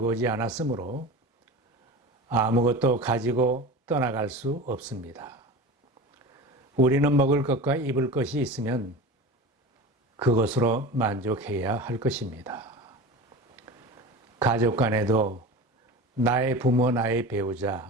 오지 않았으므로 아무것도 가지고 떠나갈 수 없습니다. 우리는 먹을 것과 입을 것이 있으면 그것으로 만족해야 할 것입니다. 가족 간에도 나의 부모, 나의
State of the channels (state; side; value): normal; both; correlation 0.32